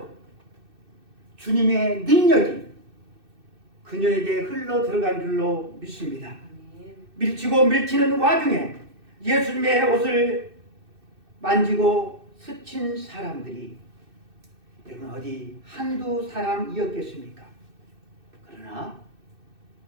주님의 능력이 그녀에게 흘러 들어간 줄로 믿습니다. 밀치고 밀치는 와중에 예수님의 옷을 만지고 스친 사람들이 여러분 어디 한두 사람이었겠습니까? 그러나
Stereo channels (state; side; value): late; left; 2.6 ms